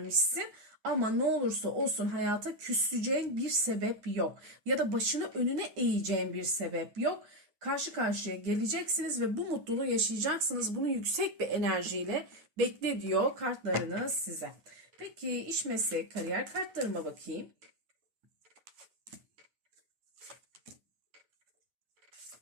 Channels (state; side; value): late; left; 9.7 ms